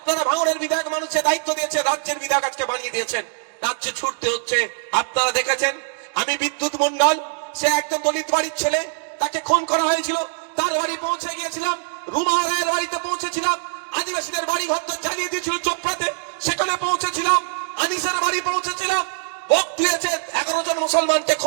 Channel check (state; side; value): silent; left; digital silence